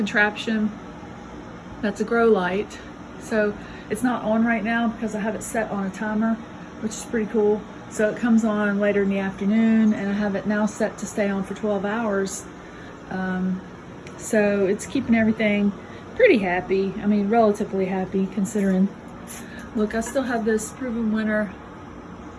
that's a grow light. So it's not on right now because I have it set on a timer, which is pretty cool. So it comes on later in the afternoon, and I have it now set to stay on for 12 hours. So it's keeping everything pretty happy. I mean, relatively happy considering. Look, I still have this proven winter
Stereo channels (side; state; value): both; identical; correlation 1.00